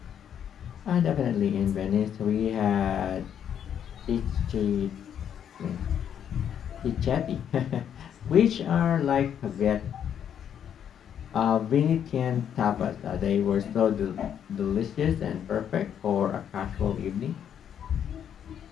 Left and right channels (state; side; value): quieter; right; 9.0 dB